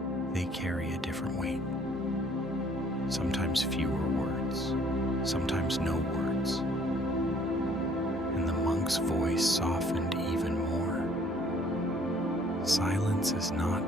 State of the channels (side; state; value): both; normal; correlation 0.59